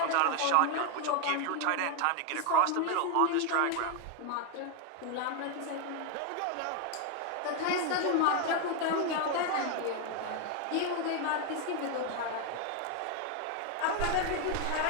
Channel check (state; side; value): different; both; correlation 0.01